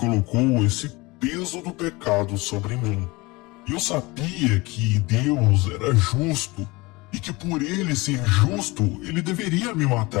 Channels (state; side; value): quieter; right; 23.3 dB